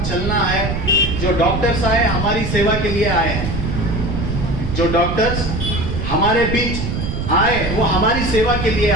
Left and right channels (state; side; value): noise; right; rumble, 3 dB below the sound